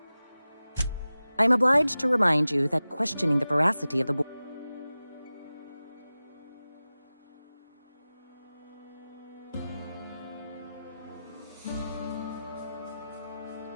I am obliged to remind you that questioning the veracity of the board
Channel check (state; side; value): inverted; both; correlation -0.96